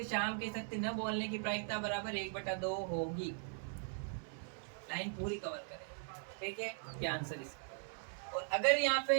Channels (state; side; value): silent; left; 51 dB below the other